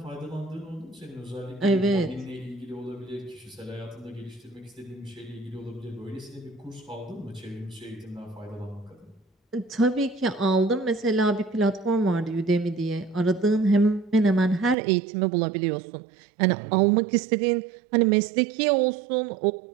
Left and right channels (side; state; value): left; drops out; at 14.8 s